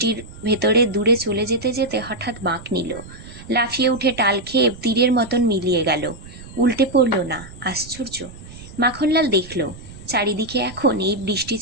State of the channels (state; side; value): noise; right; rumble, 16 dB below the sound